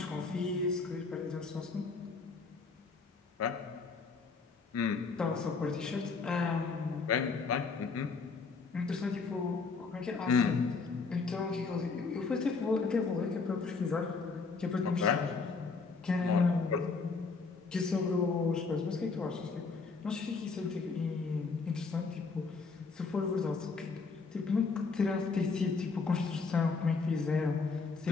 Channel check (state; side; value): quieter; right; 4.5 dB